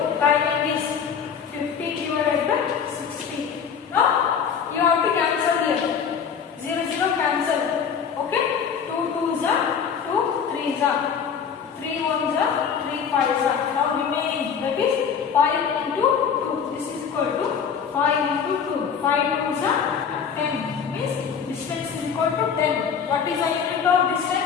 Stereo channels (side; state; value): right; quieter; 7.0 dB